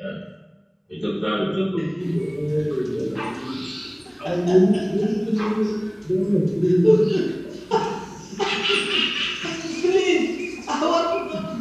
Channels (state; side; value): identical; both; correlation 1.00